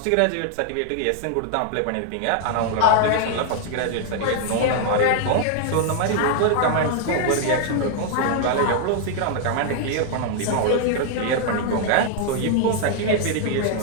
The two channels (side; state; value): both; different; correlation 0.00